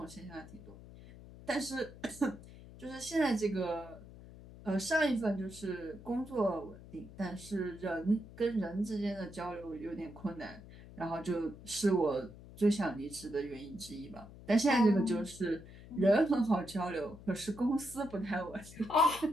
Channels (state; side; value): noise; left; hum, 17 dB below the sound